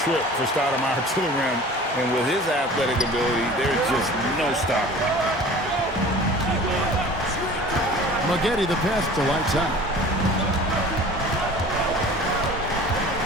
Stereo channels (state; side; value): normal; both; correlation 0.43